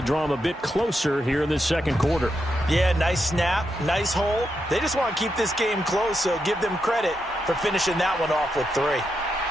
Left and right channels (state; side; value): normal; both; correlation 0.84